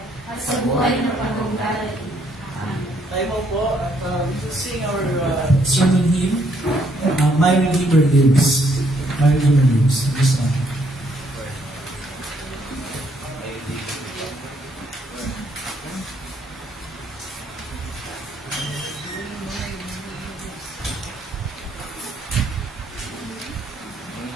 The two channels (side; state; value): both; normal; correlation 0.70